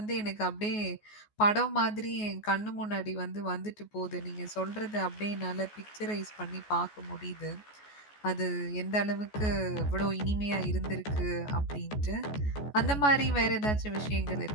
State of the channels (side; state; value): right; late; 14 ms